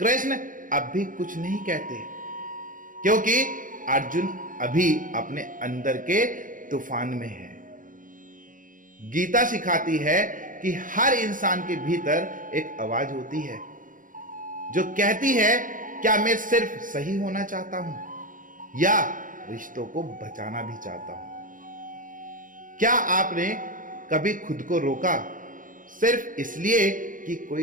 अब भी कुछ नहीं कहते, क्योंकि अर्जुन अभी अपने अंदर के तूफान में है। गीता सिखाती है कि हर इंसान के भीतर एक आवाज होती है जो कहती है, क्या मैं सिर्फ सही होना चाहता हूं या रिश्तों को बचाना भी चाहता हूं? क्या आपने कभी खुद को रोका सिर्फ इसलिए कि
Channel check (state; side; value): late; left; 0.39 ms